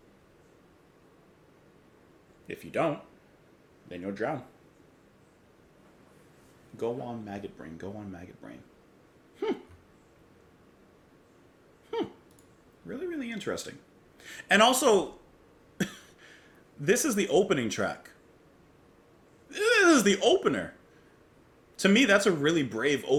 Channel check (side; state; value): both; identical; correlation 1.00